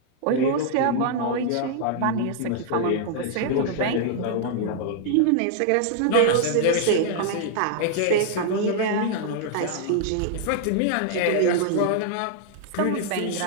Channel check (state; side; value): different; both; correlation -0.01